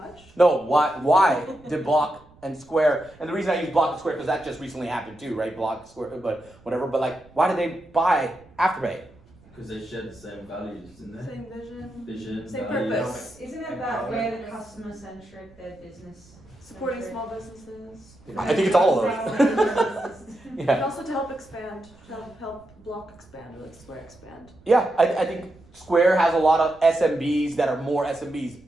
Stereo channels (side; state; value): right; noise; rumble, 26 dB below the sound